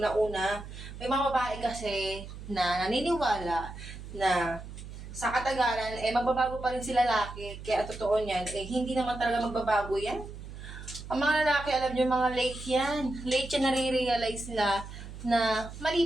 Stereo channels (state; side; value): noise; right; hum, 12 dB below the sound